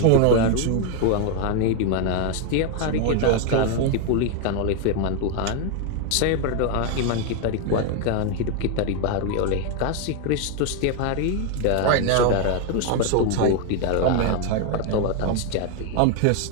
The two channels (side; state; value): both; different; correlation 0.01